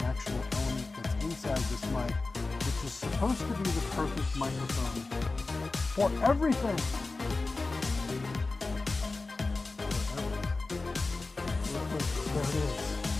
actual element that's inside this mic, which is supposed to be the perfect microphone for everything. Look, there it is.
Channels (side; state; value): right; quieter; 3.5 dB